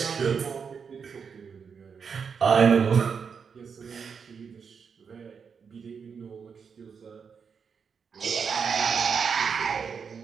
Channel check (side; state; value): left; quieter; 6.2 dB